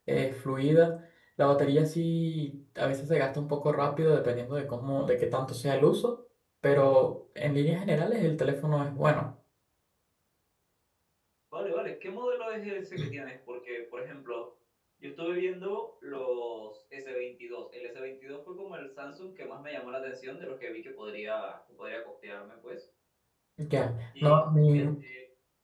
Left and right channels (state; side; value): identical; both; correlation 1.00